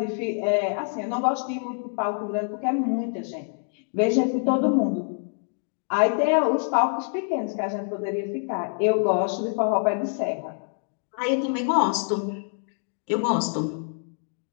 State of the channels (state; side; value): silent; right; 61 dB below the other